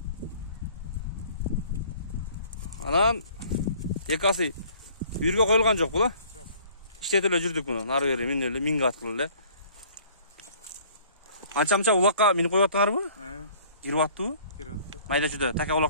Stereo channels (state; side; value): inverted; both; correlation -0.54